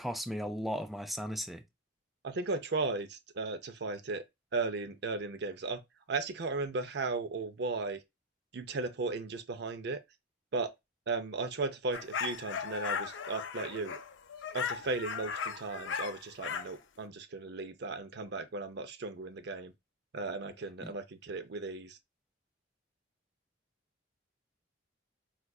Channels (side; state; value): both; normal; correlation -0.05